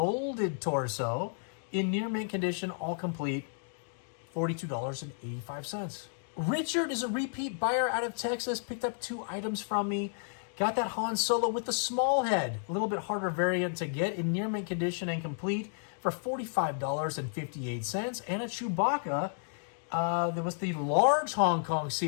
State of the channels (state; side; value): silent; right; digital silence